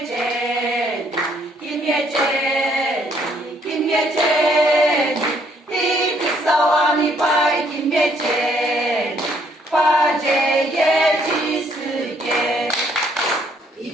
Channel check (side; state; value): both; normal; correlation 0.67